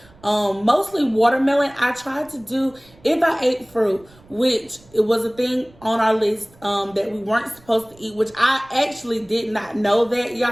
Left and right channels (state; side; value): noise; right; rumble, 27 dB below the sound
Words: mostly watermelon. I tried to do, if I ate fruit, which it was a thing on our list that we weren't supposed to eat, which I actually did not know that,